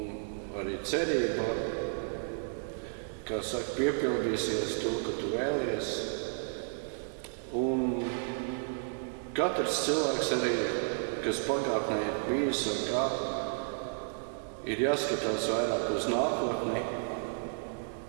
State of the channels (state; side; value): silent; left; digital silence